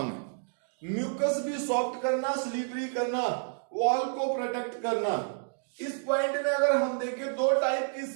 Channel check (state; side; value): silent; left; digital silence